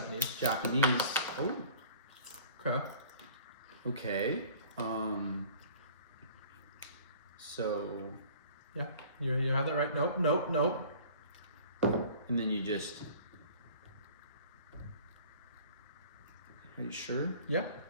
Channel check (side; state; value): both; inverted; correlation -0.49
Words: Oh. Okay. Okay. So. Yeah. You have that right? Nope. And then you just. Are you sure? Yeah.